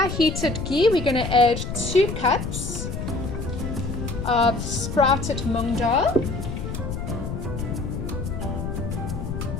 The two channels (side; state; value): left; noise; rumble, 5 dB below the sound